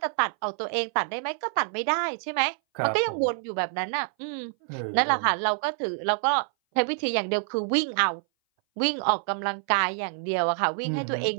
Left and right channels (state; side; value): silent; left; 59 dB below the other